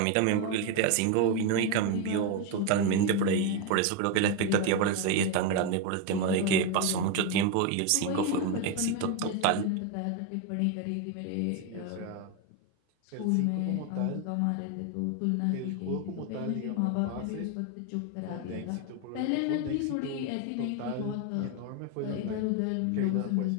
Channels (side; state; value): both; different; correlation 0.02